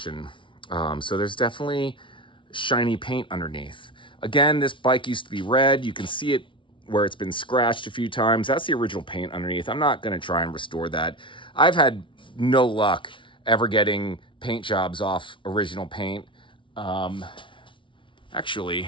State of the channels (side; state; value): right; late; 0.25 ms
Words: So there's definitely shiny paint underneath. Again, this bike used to be red. You can see it where it's been scratched a few times. That's the original paint underneath. I'm not going to try and restore that. I've had no luck ever getting paint jobs off original paint.